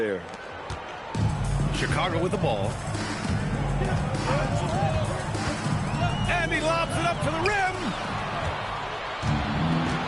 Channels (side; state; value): both; identical; correlation 1.00